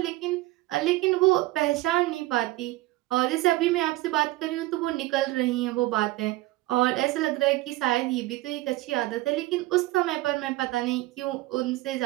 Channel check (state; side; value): quieter; left; 18.6 dB